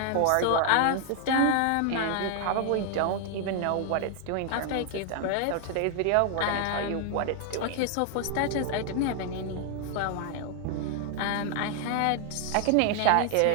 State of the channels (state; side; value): different; both; correlation 0.00